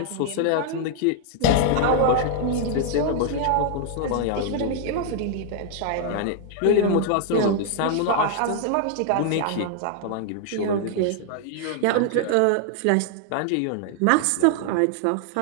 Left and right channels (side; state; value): both; different; correlation 0.00